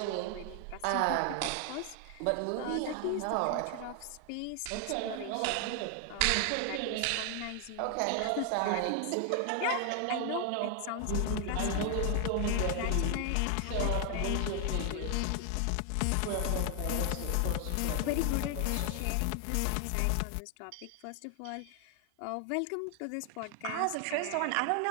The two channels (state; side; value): different; both; correlation 0.00